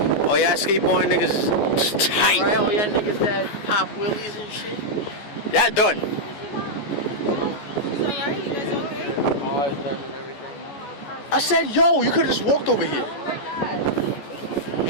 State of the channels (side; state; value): right; late; 14 ms